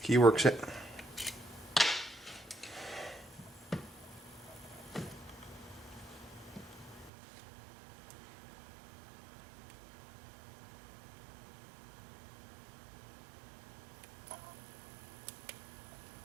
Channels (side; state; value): left; drops out; at 7.1 s